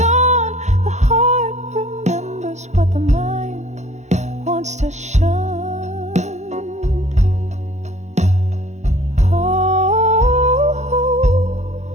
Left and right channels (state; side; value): late; left; 0.34 ms